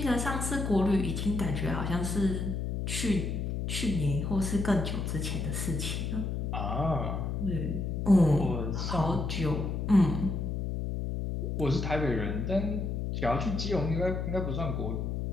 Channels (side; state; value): left; noise; hum, 2 dB below the sound